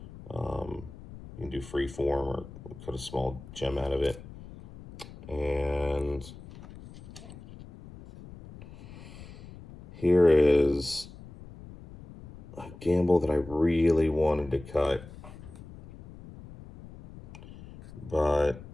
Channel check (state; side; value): noise; left; rumble, 17 dB below the sound